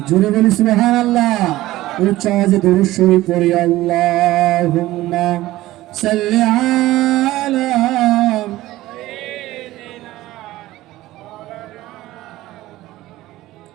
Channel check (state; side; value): quieter; left; 16.6 dB